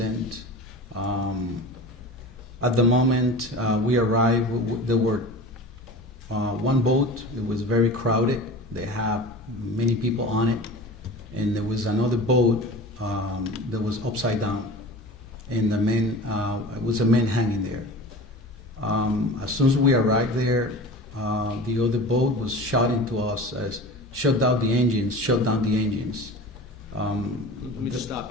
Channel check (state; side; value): normal; both; correlation 0.35